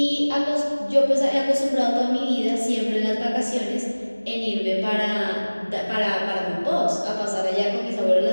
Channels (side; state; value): both; inverted; correlation -1.00